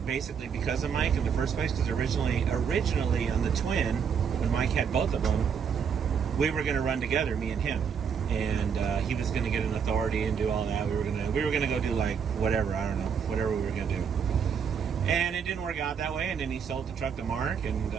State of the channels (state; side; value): quieter; left; 6.9 dB